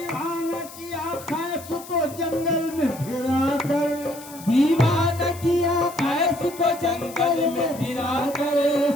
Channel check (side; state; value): left; noise; hiss, 17 dB below the sound